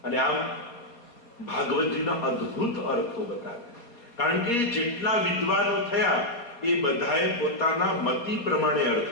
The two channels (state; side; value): late; right; 4.2 ms